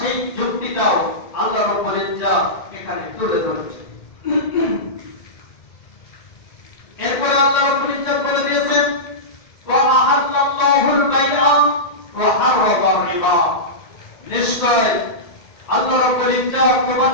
যুক্তিটাও আল্লাহ রাব্বুল ইজ্জাত এখানে তুলে ধরেছে। এরপরে আল্লাহ রাব্বুল ইজ্জাত বলে দিয়েছেন ওয়া আহাল্লাল্লাহুল বাইআ ওয়া হারামার রিবা, নিশ্চয় আল্লাহ রাব্বুল ইজ্জাত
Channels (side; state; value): right; late; 1.9 ms